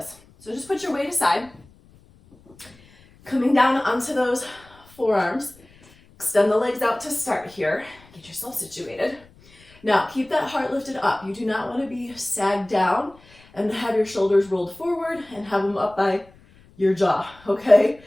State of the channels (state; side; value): noise; left; rumble, 27 dB below the sound